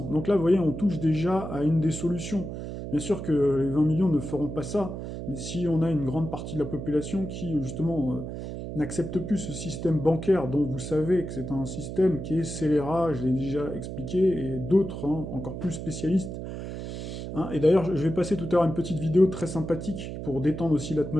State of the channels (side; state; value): right; noise; hum, 7 dB below the sound